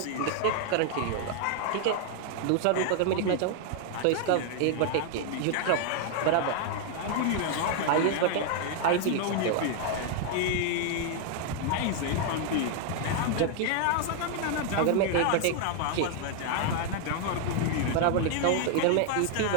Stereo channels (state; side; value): different; both; correlation 0.00